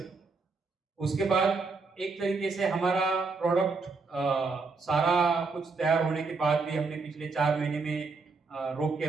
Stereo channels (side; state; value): left; quieter; 4.2 dB